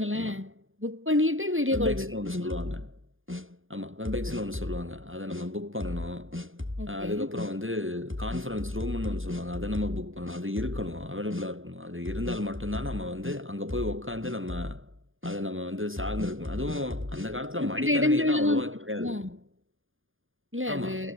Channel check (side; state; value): left; late; 0.59 ms